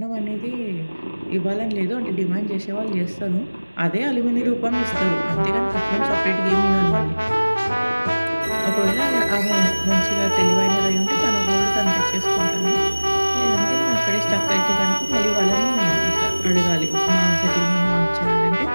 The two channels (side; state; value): both; inverted; correlation -1.00